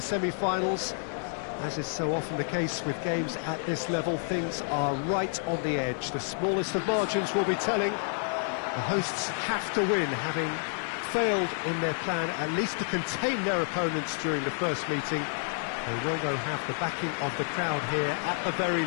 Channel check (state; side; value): silent; right; 58 dB below the other